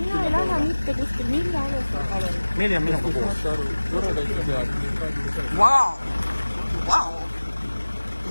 ei lähe mitte kuskil, mille alusel, palun? Meili on minuga koos. Vau! Ja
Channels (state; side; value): inverted; both; correlation -1.00